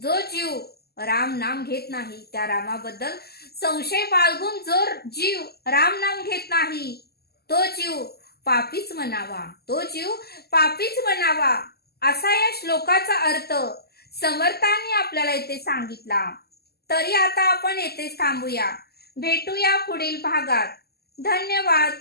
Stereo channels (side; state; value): right; late; 0.46 ms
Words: जीव राम नाम घेत नाही, त्या रामाबद्दल संशय बाळगून जो जीव राम नाम घेत नाही, तो जीव पापीच म्हणावा, असा या श्लोकाचा अर्थ समर्थांनी आपल्याला इथे सांगितला. तरी आता आपण येथेच थांबूया. भेटूया पुढील भागात. धन्यवाद.